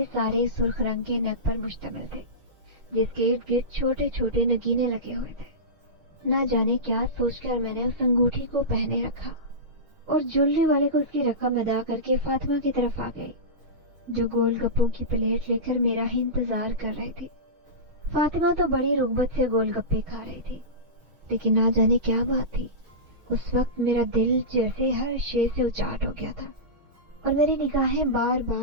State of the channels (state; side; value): late; left; 6.4 ms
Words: सारे सुर्ख रंग के नग पर मुश्तमिल थे, जिसके इर्द गिर्द छोटे छोटे नगीने लगे हुए थे। ना जाने क्या सोचकर मैंने उस अंगूठी को पहने रखा और ज्वेलरी वाले को उसकी रकम अदा करके फातिमा की तरफ आ गई, जो गोलगप्पों की प्लेट लेकर मेरा ही इंतजार कर रही थी। फातिमा तो बड़ी रुग़बत से गोलगप्पे खा रही थी, लेकिन ना जाने क्या बात थी, उस वक्त मेरा दिल जैसे हर शे से उचाट हो गया था और मेरी निगाहें बार